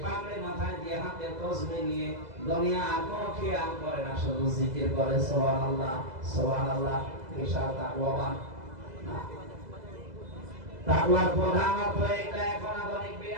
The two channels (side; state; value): left; late; 2.0 ms